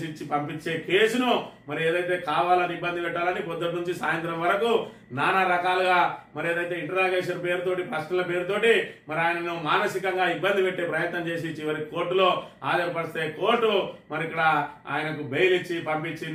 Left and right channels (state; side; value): identical; both; correlation 1.00